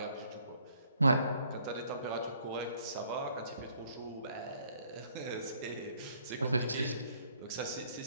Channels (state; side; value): inverted; both; correlation -0.63